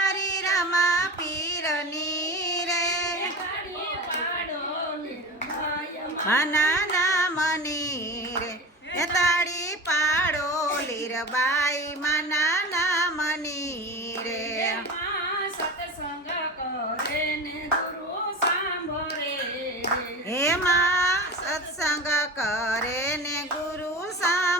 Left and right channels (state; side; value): normal; both; correlation 0.29